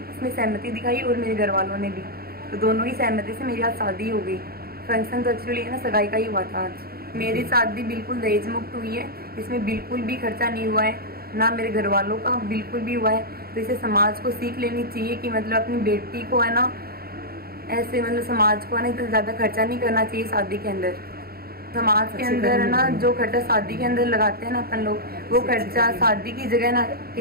सहमति दिखाई और मेरे घर वालों ने भी, तो दोनों ही सहमति से मेरी आज शादी हो गई। फंक्शन तो एक्चुअली ना सगाई का ही हुआ था आज। मेरी शादी बिल्कुल दहेज मुक्त हुई है, इसमें बिल्कुल भी खर्चा नहीं हुआ है, ना मेरे घर वालों का बिल्कुल भी हुआ है। तो इसे समाज को सीख लेनी चाहिए कि मतलब अपनी बेटी को है ना ऐसे मतलब समाज को है ना इतना ज़्यादा खर्चा नहीं करना चाहिए शादी के अंदर। समाज के अंदर है ना जो खर्चा शादी के अंदर लगाते हैं ना अपन लोग, वो खर्चा शादी की जगह ना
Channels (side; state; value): left; late; 0.44 ms